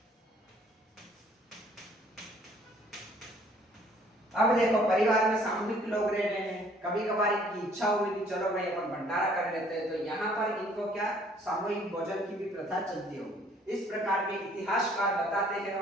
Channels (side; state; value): both; normal; correlation 0.59